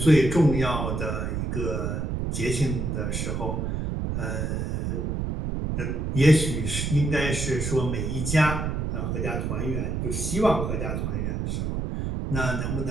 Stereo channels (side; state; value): right; noise; rumble, 1 dB below the sound